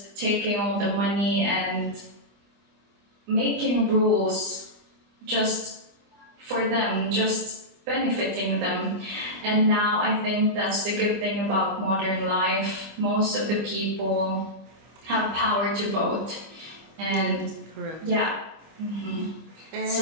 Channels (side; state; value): left; late; 25 ms